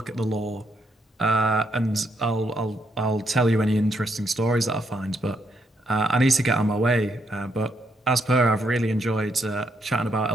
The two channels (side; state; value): both; normal; correlation 0.77